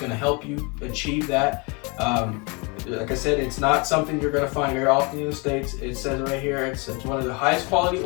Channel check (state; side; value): quieter; right; 30.1 dB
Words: to help you achieve that. Like I said, it's not something you're going to find very often in the States. It says right here, it's one of the highest quality